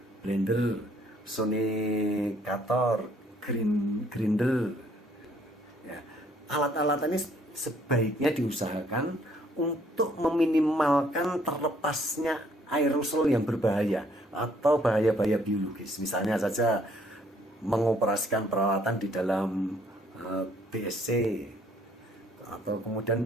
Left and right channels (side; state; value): both; normal; correlation 0.64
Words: blender, sonicator, grinder. Ya. Alat-alat ini sebaiknya diusahakan untuk meminimalkan terlepasnya aerosol yang berbahaya atau bahaya-bahaya biologis. Misalnya saja mengoperasikan peralatan di dalam BSC atau